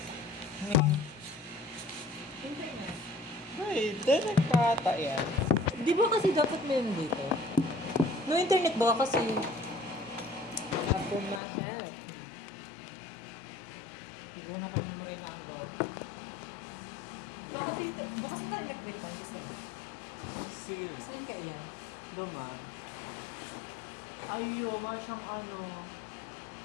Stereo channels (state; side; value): drops out; right; at 11.4 s